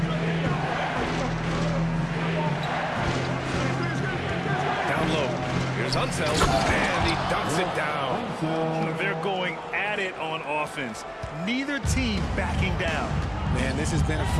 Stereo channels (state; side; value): identical; both; correlation 1.00